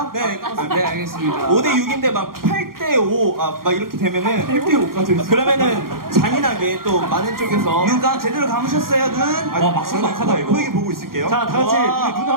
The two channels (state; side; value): late; left; 0.92 ms